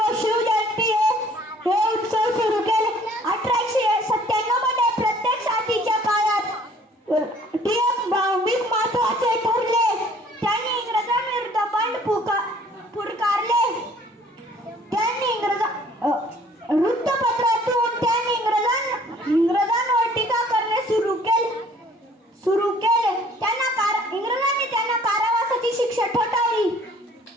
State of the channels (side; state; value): both; normal; correlation 0.55